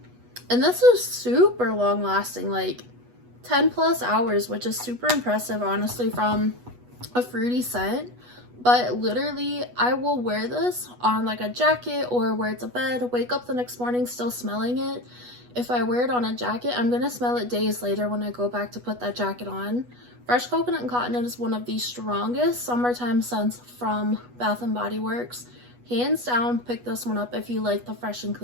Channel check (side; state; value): left; late; 8.2 ms